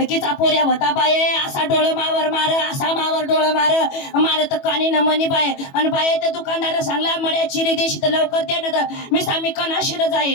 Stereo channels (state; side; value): late; right; 21 ms